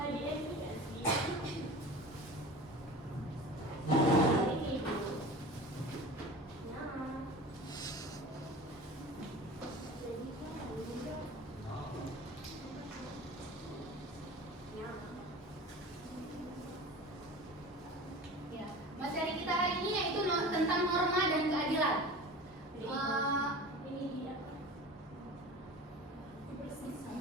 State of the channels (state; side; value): normal; both; correlation 0.36